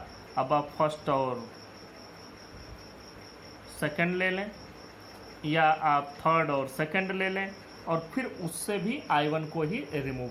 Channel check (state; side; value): identical; both; correlation 1.00